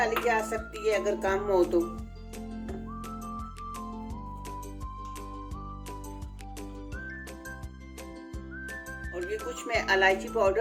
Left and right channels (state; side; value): identical; both; correlation 1.00